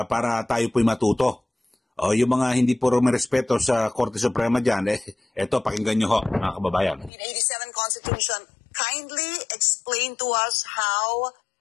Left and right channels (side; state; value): right; drops out; at 7.1 s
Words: para tayo po'y matuto. Yung mga hindi po rumerespeto sa Korte Suprema dyan, ito pakinggan nyo ho, mga kababayan. 1987 Constitution, kindly explain to us how